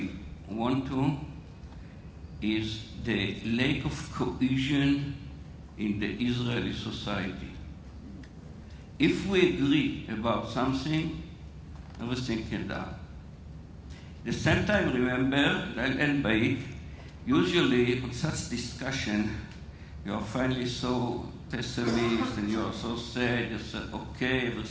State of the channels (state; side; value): identical; both; correlation 1.00